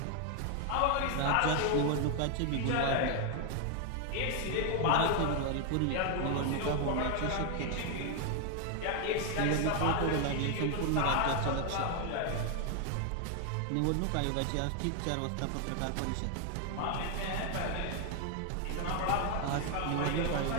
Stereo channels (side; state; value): both; different; correlation 0.00